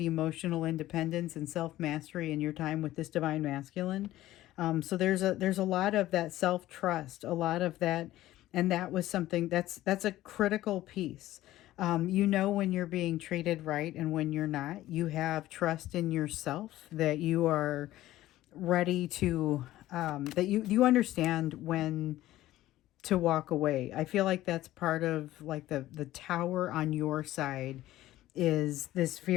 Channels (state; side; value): quieter; right; 15.2 dB